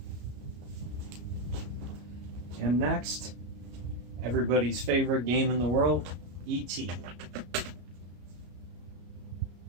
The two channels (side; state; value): left; late; 33 ms